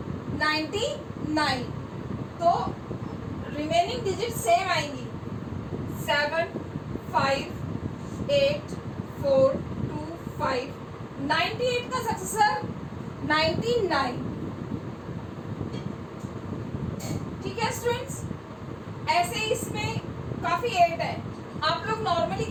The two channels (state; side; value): identical; both; correlation 1.00